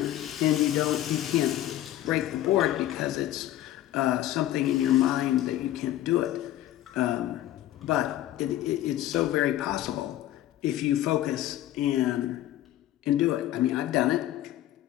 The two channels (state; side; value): quieter; right; 13.5 dB